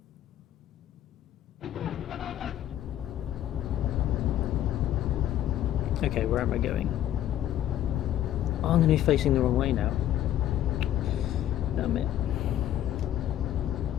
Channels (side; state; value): right; quieter; 11.9 dB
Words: Okay, where am I going? Oh, I'm going to be facing the wrong way now. Damn it.